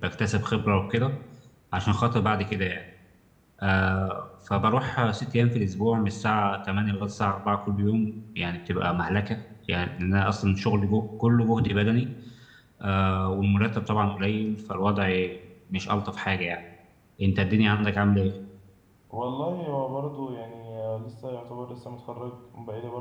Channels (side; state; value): both; identical; correlation 1.00